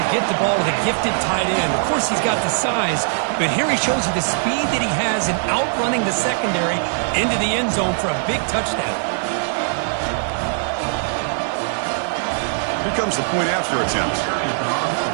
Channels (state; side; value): silent; left; digital silence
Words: get the ball to the gifted tight end. Of course, he's got the size, but here he shows you the speed that he has in outrunning the secondary into the end zone for a big touchdown. Here comes the point after attempt.